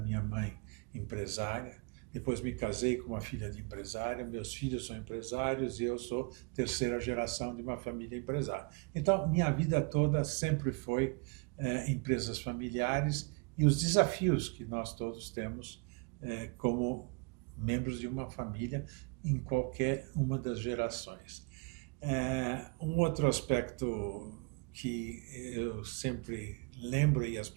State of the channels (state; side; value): quieter; left; 32.1 dB